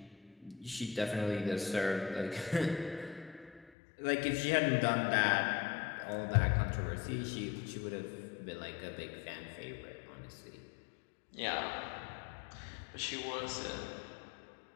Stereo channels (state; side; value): drops out; right; at 3.7 s